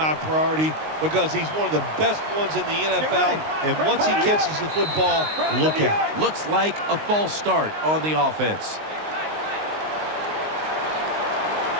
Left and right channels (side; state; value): left; late; 19 ms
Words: priority because he's one of the best ones in the NFL. And once he catches the football, look out. Looks like a false start on the offense.